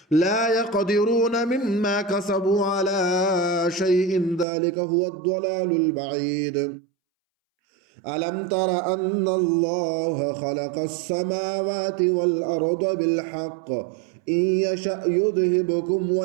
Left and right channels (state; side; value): drops out; left; at 4.5 s